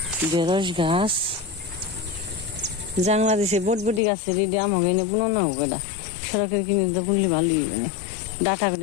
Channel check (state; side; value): drops out; right; at 4.0 s